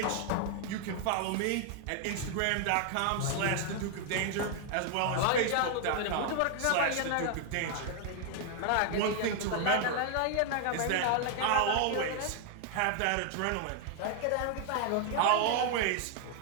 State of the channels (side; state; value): both; different; correlation 0.00